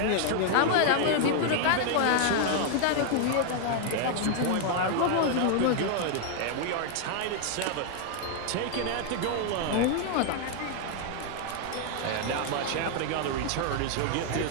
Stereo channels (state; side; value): different; both; correlation 0.00